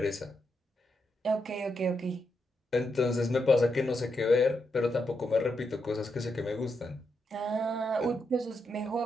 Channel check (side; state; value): both; normal; correlation 0.83